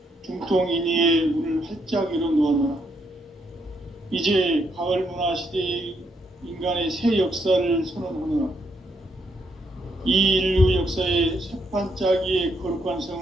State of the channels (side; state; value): both; normal; correlation 0.75